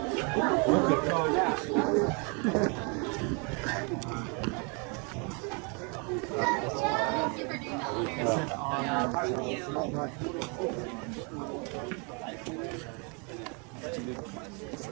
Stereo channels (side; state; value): left; quieter; 34.3 dB